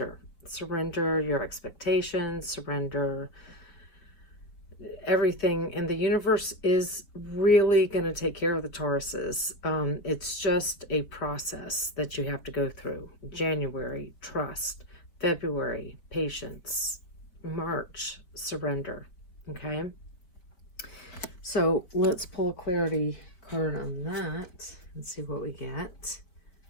Surrender your expectations, surrender everything, and the universe is really going to take care of the Tauruses. It's just a process that you have to go through. January, trust. February, patience. March, surrender. Okay, so let's pull a clarity card on that and see what we get.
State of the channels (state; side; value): late; right; 4.7 ms